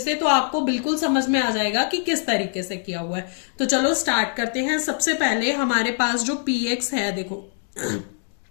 तो आपको बिल्कुल समझ में आ जाएगा कि किस तरीके से किया हुआ है। तो चलो स्टार्ट करते हैं। सबसे पहले हमारे पास जो px है, देखो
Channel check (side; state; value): right; silent; digital silence